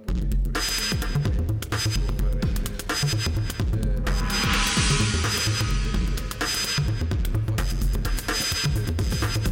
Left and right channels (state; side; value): identical; both; correlation 1.00